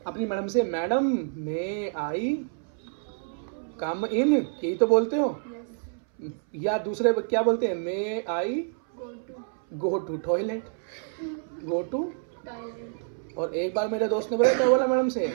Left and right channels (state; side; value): silent; left; 60 dB below the other